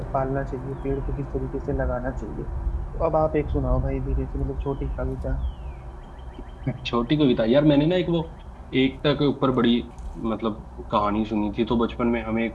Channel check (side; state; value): both; identical; correlation 1.00